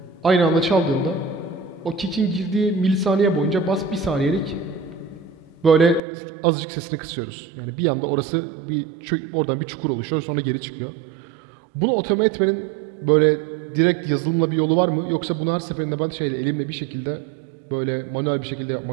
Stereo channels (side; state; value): left; drops out; at 6.0 s